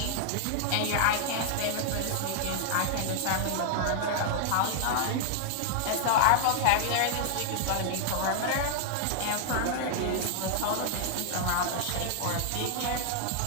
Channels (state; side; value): different; both; correlation -0.01